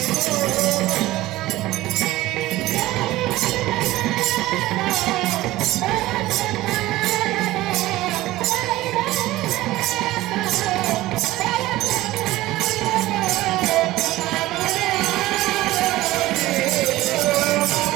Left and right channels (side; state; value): left; quieter; 17.2 dB